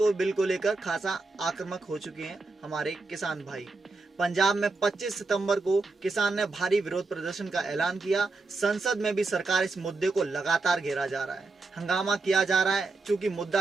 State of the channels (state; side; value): quieter; left; 3.6 dB